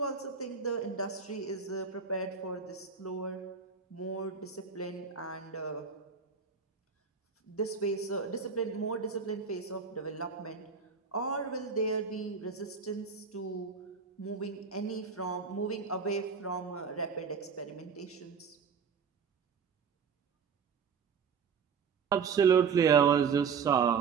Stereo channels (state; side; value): quieter; left; 6.0 dB